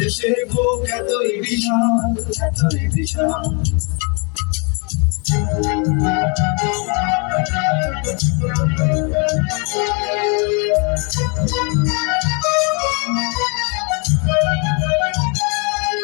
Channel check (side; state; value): right; quieter; 34.5 dB